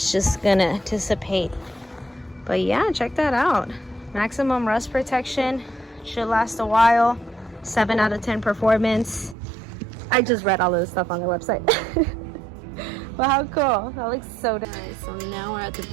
just gonna dissipate. But yeah, check that out. Maximum rust protection, should last a while. 7 out of 10 performance. I just read all of this stuff on their website. But how cool, that looks so nice. So now we're at the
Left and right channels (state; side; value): drops out; left; at 9.3 s